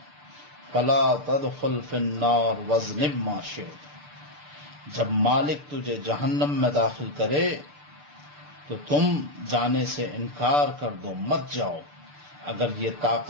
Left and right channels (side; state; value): left; late; 6.8 ms